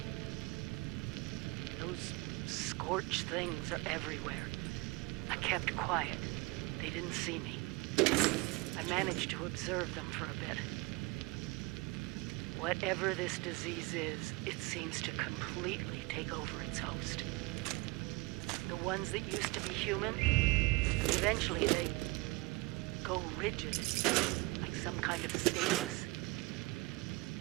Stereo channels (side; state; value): left; quieter; 24.3 dB